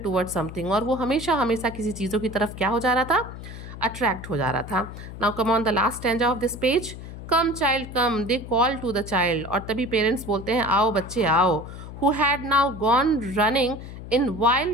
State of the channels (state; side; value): noise; left; hum, 12 dB below the sound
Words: towards something, और वो हमेशा किसी चीज़ों की तरफ क्या हो जा रहा था, अट्रैक्ट हो जा रहा था। Now come on the last stanza of this page. Come child come, they call to the child. और तभी पेरेंट्स बोलते हैं आओ बच्चे आओ। Who had now gone running in